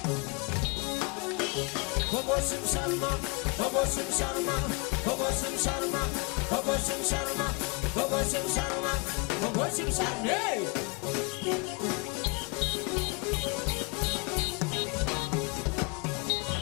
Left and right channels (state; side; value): quieter; right; 29.8 dB